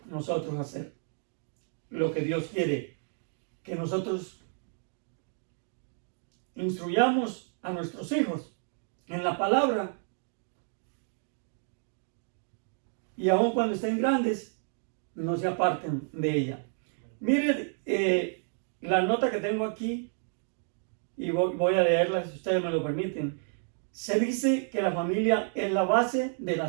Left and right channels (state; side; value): silent; left; 57 dB below the other